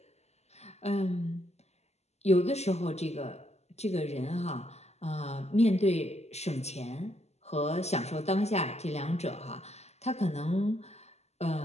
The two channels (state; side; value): late; right; 0.32 ms